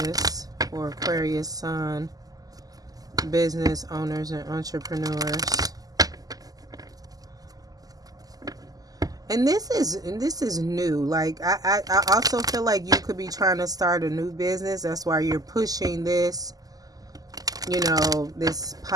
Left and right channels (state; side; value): late; left; 0.18 ms